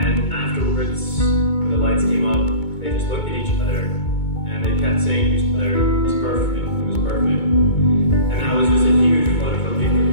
afterwards, when the lights came up, they just looked at each other, and they kept saying to each other, "It was perfect, it was perfect." And that was just a huge flood of relief for me.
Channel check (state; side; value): late; right; 2.2 ms